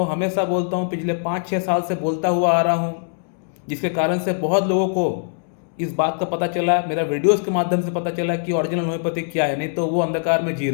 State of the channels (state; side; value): silent; right; 64 dB below the other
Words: हमेशा बोलता हूँ, पिछले 5-6 साल से बोलता हुआ आ रहा हूँ, जिसके कारण से बहुत लोगों को इस बात का पता चला, मेरा वीडियोस के माध्यम से पता चला कि ओरिजिनल होम्योपैथी क्या है। नहीं तो वो अंधकार में जी